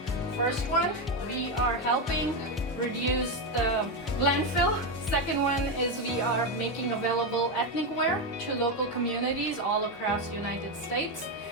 First one, we are helping reduce the landfill. Second one is we are making available ethnic wear to local communities all across the United States.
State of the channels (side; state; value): both; normal; correlation 0.09